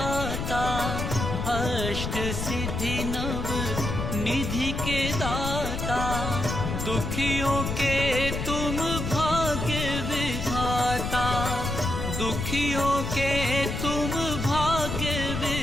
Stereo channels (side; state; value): left; noise; rumble, 3 dB below the sound